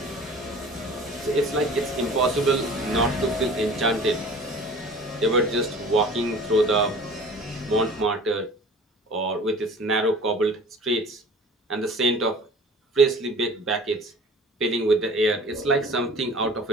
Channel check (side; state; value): both; normal; correlation 0.45